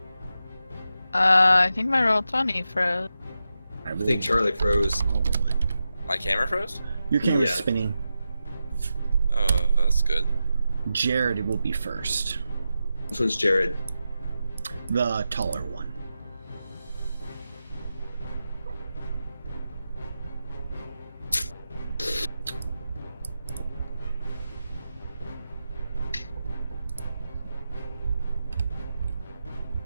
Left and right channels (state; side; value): inverted; both; correlation -0.90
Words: I think my roll 20 froze. I think Charlie froze. My camera froze? Your camera's Yeah. spinning. Oh, that's good. Jared will be first. This one's Jared. The taller one.